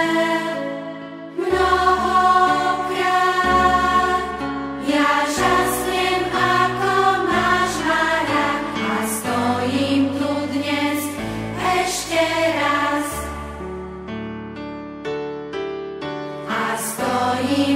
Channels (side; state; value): both; identical; correlation 1.00